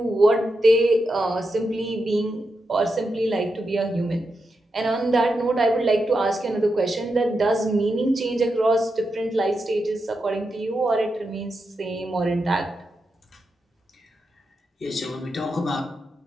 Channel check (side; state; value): both; normal; correlation 0.87